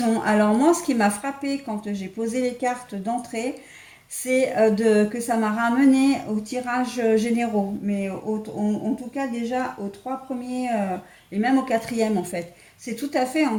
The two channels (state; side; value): identical; both; correlation 1.00